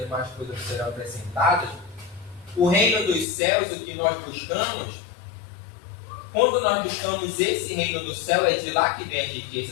coisas serão acrescentadas. O reino dos céus, o que nós buscamos, quando nós buscamos esse reino do céu, é de lá que vem as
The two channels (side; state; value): right; drops out; at 3.2 s